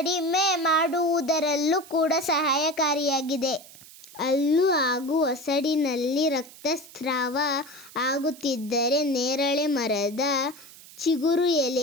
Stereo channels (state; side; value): noise; right; hiss, 20 dB below the sound